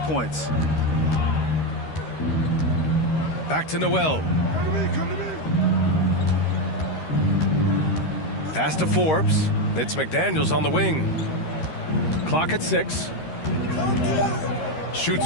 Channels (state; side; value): late; right; 13 ms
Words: points. Back to Noel. Pass to Forbes. It's McDaniels on the wing. Clock at 6.